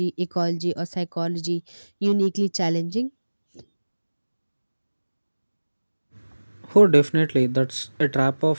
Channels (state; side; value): inverted; both; correlation -1.00